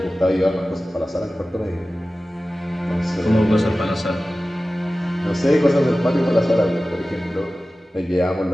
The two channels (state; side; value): normal; both; correlation 0.96